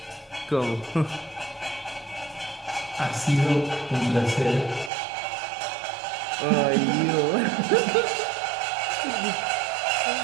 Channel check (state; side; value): drops out; left; at 4.9 s